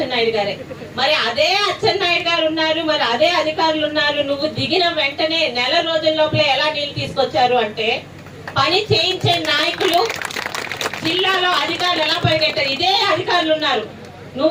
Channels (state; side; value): identical; both; correlation 1.00